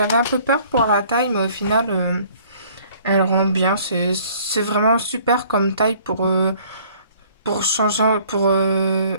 un peu peur pour la taille, mais au final, elle rend bien. C'est vraiment super comme taille pour changer,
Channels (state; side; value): inverted; both; correlation -0.57